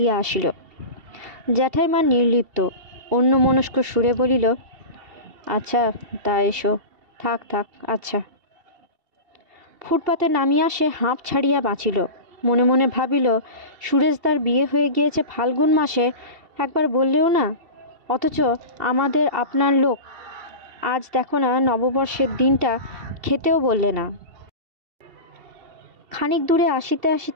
আসিল। জ্যাঠাইমা নির্লিপ্ত অন্যমনস্ক সুরে বলিল, আচ্ছা তা এসো, থাক থাক, আচ্ছা। ফুটপাতে নামিয়া সে হাঁপ ছাড়িয়া বাঁচিল। মনে মনে ভাবিল, সুরেশদার বিয়ে হয়ে গিয়েছে ফাল্গুন মাসে, একবার বললেও না, অথচ আমাদের আপনার লোক, আজ দেখো না নববর্ষের দিনটা খেতেও বললে না। খানিক দূরে আসিতে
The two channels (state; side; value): late; left; 2.7 ms